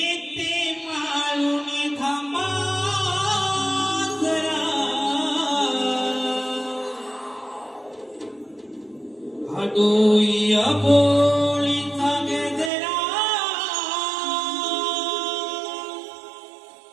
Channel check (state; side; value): drops out; left; at 12.7 s